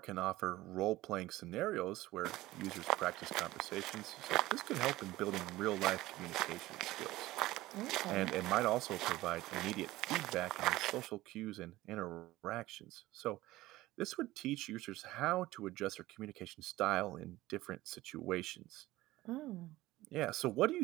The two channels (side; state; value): left; quieter; 17.5 dB